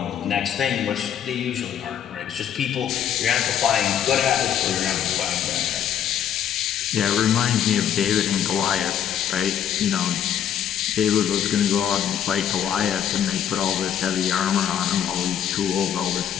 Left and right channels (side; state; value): right; quieter; 9.5 dB